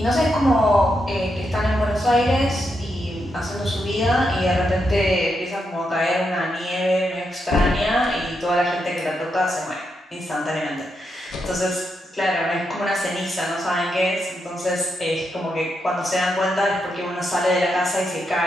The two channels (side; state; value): both; normal; correlation 0.83